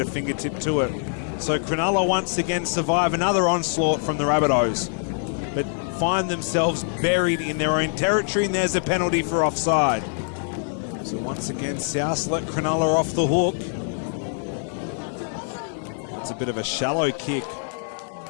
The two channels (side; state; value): right; silent; 62 dB below the other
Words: fingertip to it. So Cronulla once again survive another onslaught from the Rabbitohs, but find themselves buried in their own territory, and there's a penalty for offside. So once again, South let Cronulla off the hook. It's a bit of a shallow kick.